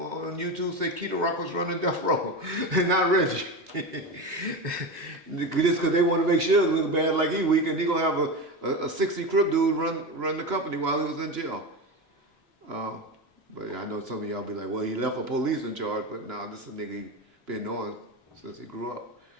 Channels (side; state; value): both; normal; correlation 0.21